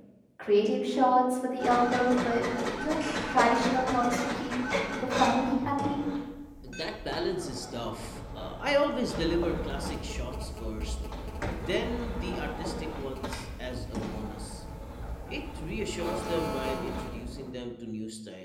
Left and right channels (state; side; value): identical; both; correlation 1.00